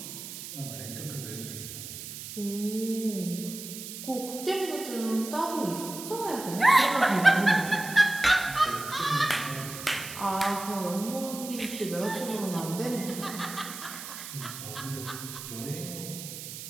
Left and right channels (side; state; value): right; noise; hiss, 10 dB below the sound